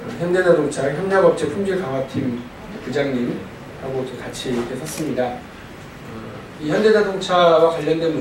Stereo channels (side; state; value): both; identical; correlation 1.00